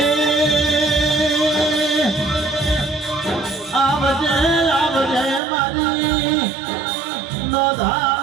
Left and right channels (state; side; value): drops out; left; at 5.4 s